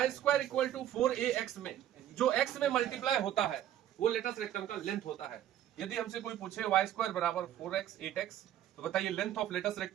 square equal to 4ax में जो x में मल्टीप्लाई होता है वो लेटस रेक्टम का लेंथ होता है। यदि हमसे कोई पूछे y स्क्वायर बराबर 4x 8x, तो बताइए लेंथ ऑफ लेटस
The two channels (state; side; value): quieter; left; 11.7 dB